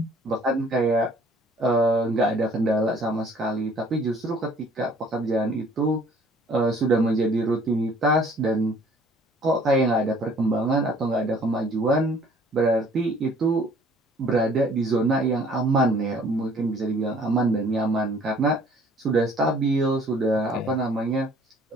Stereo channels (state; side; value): normal; both; correlation 0.55